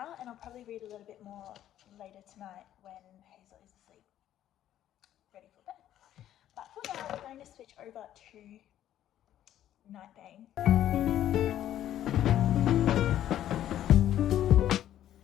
and I'll probably read a little bit more later tonight when Hazel is asleep, ready for bed. But for now, we're going to switch over to Nightbane.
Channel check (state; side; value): quieter; right; 11.8 dB